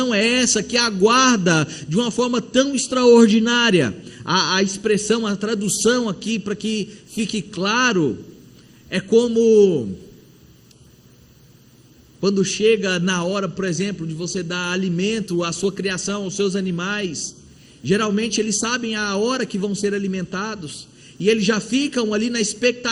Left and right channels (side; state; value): both; identical; correlation 1.00